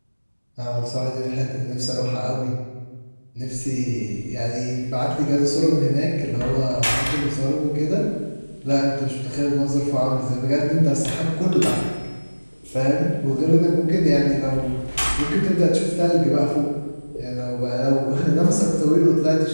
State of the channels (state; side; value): inverted; both; correlation -1.00